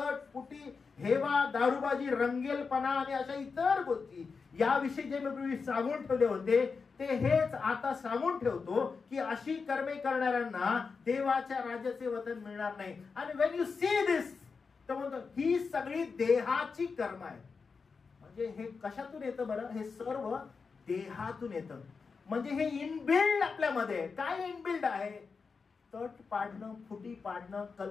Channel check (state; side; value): quieter; right; 5.0 dB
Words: फुटी, हेवा, दारूबाजी, रंगेलपणा आणि अशा इतर गोष्टी याविषयी जे मी पूर्वी सांगून ठेवले होते ते हेच आता सांगून ठेवतो की अशी कर्मे करणाऱ्यांना देवाच्या राज्याचे वतन मिळणार नाही. आणि व्हेन यू सी दिस, तर म्हणतो ही सगळी देहाची कर्म आहे. म्हणजे हे कशातून येतं बरं, हे सर्व देहातून येतं. म्हणजे हे इनबिल्ड आपल्यामध्ये. काय इनबिल्ड आहे, तट पाडणं, फुटी पाडणं,